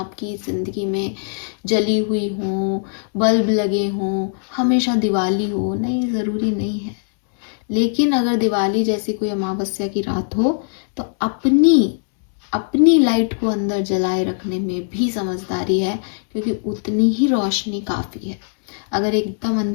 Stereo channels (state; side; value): silent; right; 66 dB below the other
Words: ज़िंदगी में जली हुई हों, बल्ब लगे हों, हमेशा दिवाली हो, नहीं, ज़रूरी नहीं है। लेकिन अगर दिवाली जैसी कोई अमावस्या की रात हो, तो अपनी अपनी लाइट को अंदर जलाए रखने में भी समझदारी है, क्योंकि उतनी ही रोशनी काफ़ी है। अगर एकदम